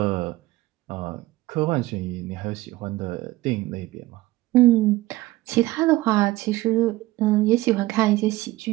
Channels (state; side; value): quieter; left; 17.8 dB